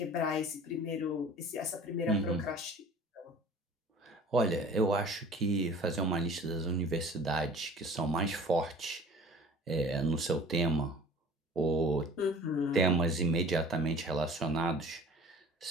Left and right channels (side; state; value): both; normal; correlation 0.45